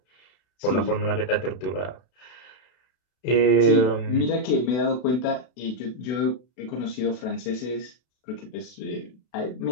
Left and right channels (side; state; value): right; late; 32 ms